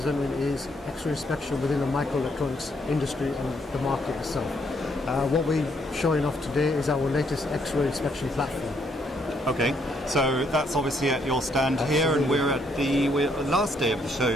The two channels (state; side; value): normal; both; correlation 0.72